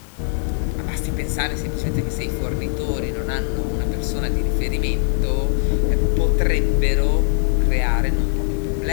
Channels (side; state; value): right; silent; 65 dB below the other